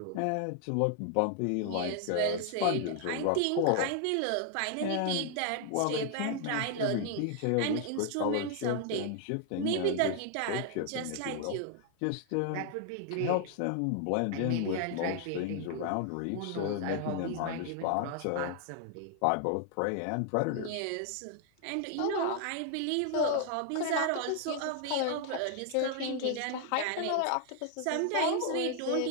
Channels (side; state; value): both; different; correlation 0.00